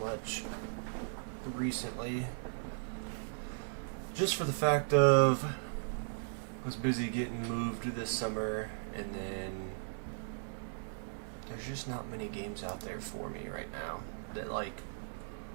recently. Just for the fact of I was busy getting moved this summer, and then there's just not many games out there for me right now that like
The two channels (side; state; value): left; silent; digital silence